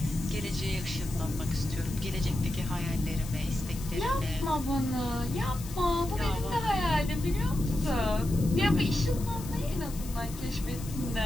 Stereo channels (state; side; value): noise; left; hiss, 14 dB below the sound